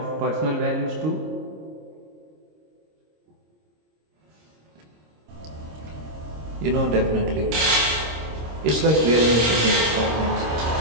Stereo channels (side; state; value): left; late; 26 ms